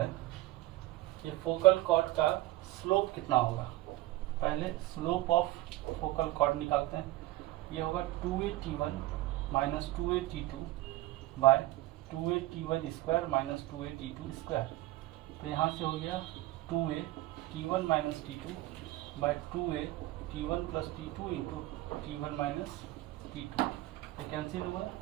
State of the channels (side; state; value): left; quieter; 17.4 dB